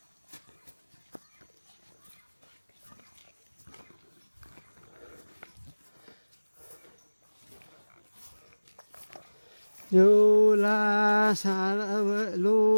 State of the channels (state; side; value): inverted; both; correlation -1.00